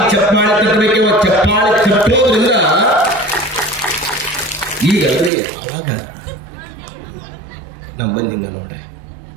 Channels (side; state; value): left; drops out; at 5.3 s